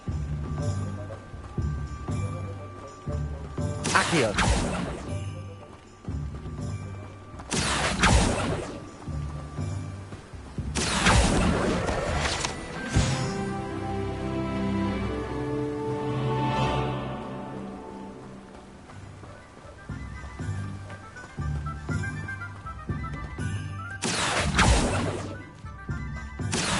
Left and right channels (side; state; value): both; identical; correlation 1.00